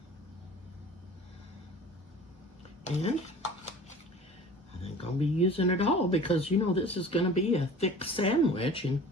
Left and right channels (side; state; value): both; normal; correlation 0.42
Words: And I think I'll be using it all because, you know, this is going to be a thick sandwich, and